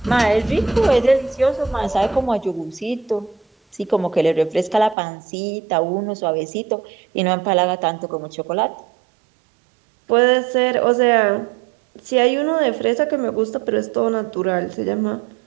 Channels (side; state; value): left; drops out; at 5.0 s